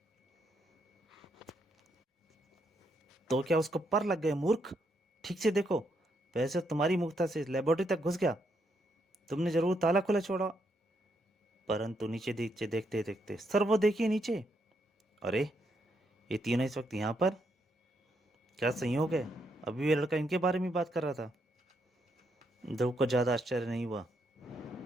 तो क्या उसको पर लग गए मूर्ख? ठीक से देखो। वैसे तुम्हारी मुक्ता से लेबोरेटरी तक घुस गया। तुमने जरूर ताला खुला छोड़ा। परंतु नीचे नीचे देखते देखते, सर वो देखिए नीचे। अरे, ये तीनों इस वक्त यहाँ पर? क्या संयोग है, अभी ये लड़का इनके बारे में बात कर रहा था। ध्रुव को ज़्यादा आश्चर्य नहीं हुआ।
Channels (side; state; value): both; normal; correlation 0.77